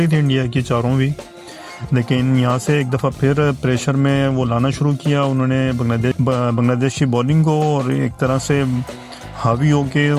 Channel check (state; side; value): identical; both; correlation 1.00